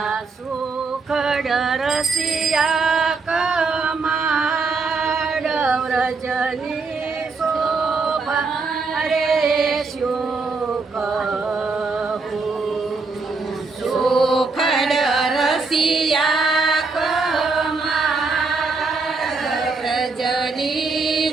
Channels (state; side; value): quieter; left; 4.2 dB